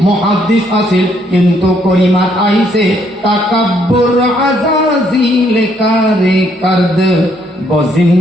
মুহাদ্দিস আছিল, কিন্তু করিমাত আইছে তাকাব্বুর আজাজিল কারে করদ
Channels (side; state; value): both; normal; correlation 0.70